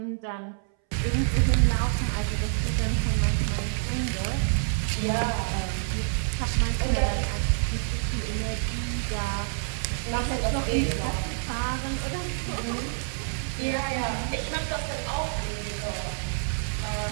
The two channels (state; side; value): silent; left; 60 dB below the other